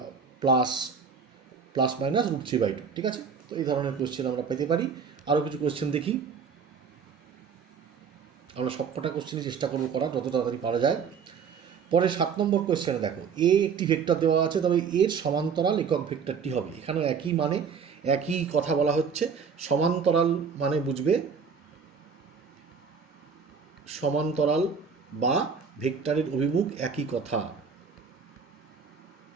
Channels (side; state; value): left; quieter; 6.2 dB